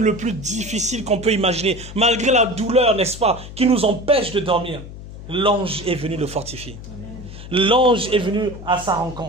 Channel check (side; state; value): left; noise; hum, 13 dB below the sound